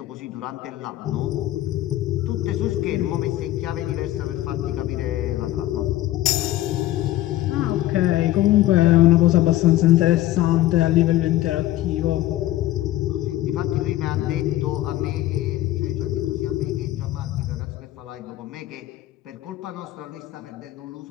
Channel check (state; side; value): quieter; right; 14.9 dB